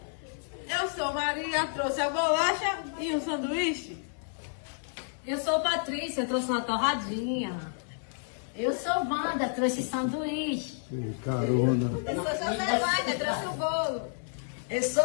Eu sou Maria, trouxe a bolacha e um sanduíche. Eu sou Patrícia, trouxe uma torradinha. Eu sou Wanda, trouxe sanduíche. Carona. Eu sou José trouxe o bolo. Eu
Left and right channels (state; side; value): silent; right; digital silence